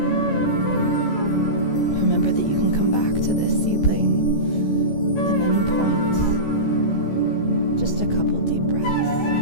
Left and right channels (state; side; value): late; right; 14 ms